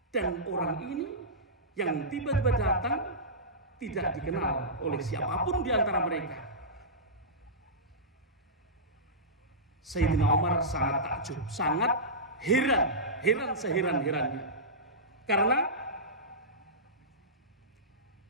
Dan orang ini yang tiba-tiba datang tidak dikenal oleh siapapun di antara mereka. Sayyidina Umar sangat takjub, sangat heran seheran-herannya. Karena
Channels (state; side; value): normal; both; correlation -0.16